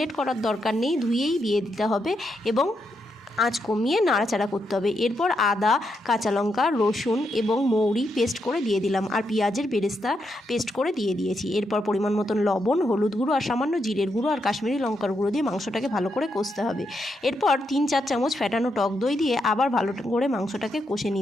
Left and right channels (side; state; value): both; normal; correlation 0.82